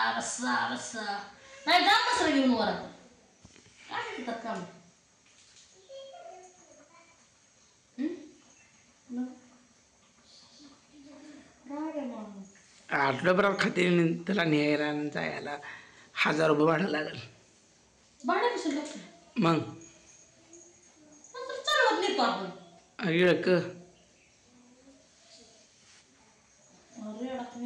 बसा बसा. नाही जा मसरा घेऊन वर आता. काय म्हणतात काम. आठवड्याभरात खाते त्याला न्यायला आणि जायला 1000 रुपये भाडं लागेल. भाडं कसं लागतं मग चालवत नेतो आपण. इळक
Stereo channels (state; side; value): identical; both; correlation 1.00